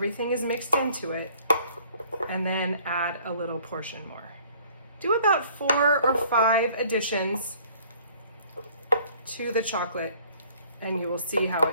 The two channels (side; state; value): both; inverted; correlation -0.57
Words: is mixed into it, and then add a little portion more. Do about 4 or 5 additions to the chocolate, and you will see how